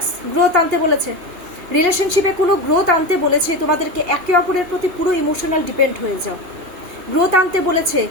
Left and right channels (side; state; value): left; late; 2.8 ms